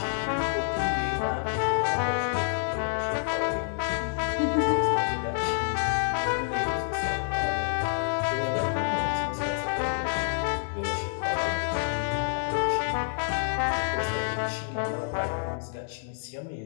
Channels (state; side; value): silent; right; digital silence